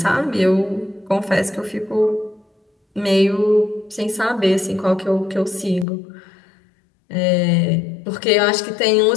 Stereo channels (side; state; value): right; drops out; at 5.9 s